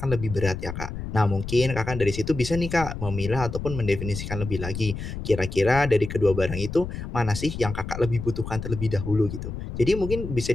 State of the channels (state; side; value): noise; left; rumble, 7 dB below the sound